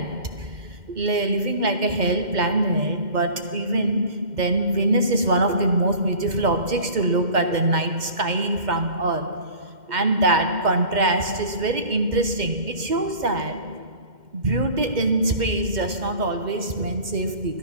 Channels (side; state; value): left; late; 2.1 ms